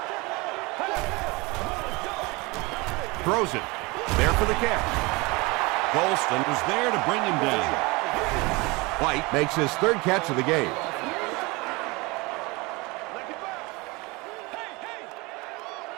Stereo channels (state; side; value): quieter; left; 25.0 dB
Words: Throws it. There for the catch. Golston was there to bring him down. White makes his 3rd catch of the game.